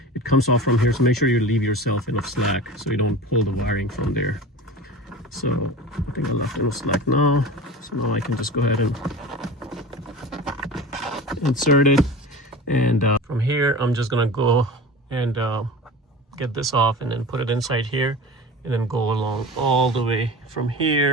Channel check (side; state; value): both; normal; correlation 0.34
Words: it comes off from here, so make sure you leave yourself enough slack so you don't pull the wiring from there. So I think I left enough slack now, so now I can just go ahead and insert it. And from here I'm just gonna go and get this off and then put it inside here, and then go along all the way from